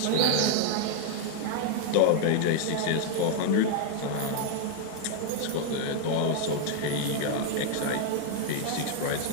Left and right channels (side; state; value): both; different; correlation 0.00